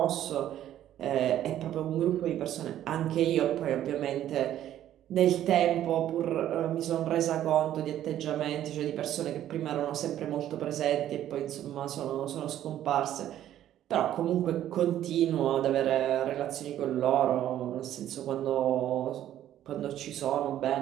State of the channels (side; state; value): left; quieter; 11.9 dB